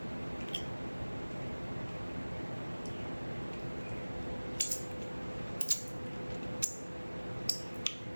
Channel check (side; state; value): both; inverted; correlation -1.00